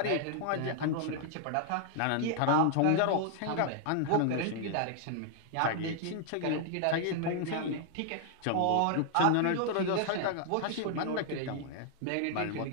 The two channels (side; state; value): both; different; correlation 0.00